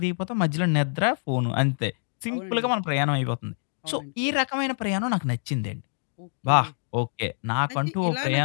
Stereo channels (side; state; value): right; silent; digital silence